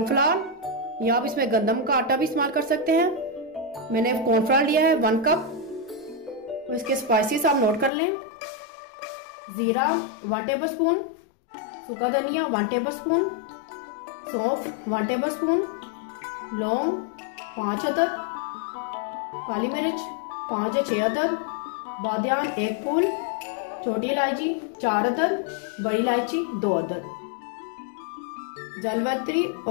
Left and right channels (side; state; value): right; drops out; at 7.9 s